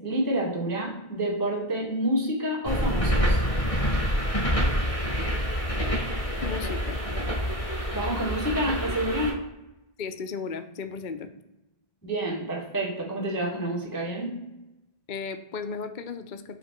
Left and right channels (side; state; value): right; late; 1.6 ms